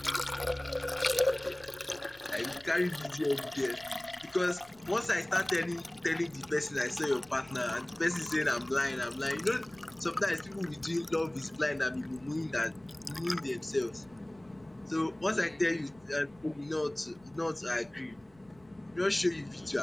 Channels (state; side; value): noise; left; rumble, 28 dB below the sound